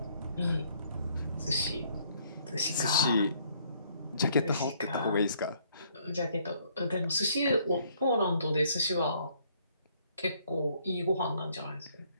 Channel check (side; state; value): both; inverted; correlation -0.65